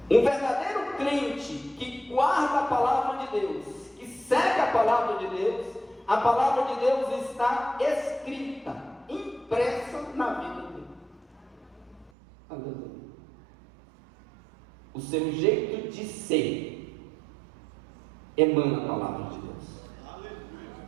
Um verdadeiro crente que guarda a palavra de Deus, que segue a palavra de Deus, a palavra de Deus está escrita, impressa na vida dele. Aleluia. O seu jeito de ser emana a palavra de Deus.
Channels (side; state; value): left; drops out; at 12.1 s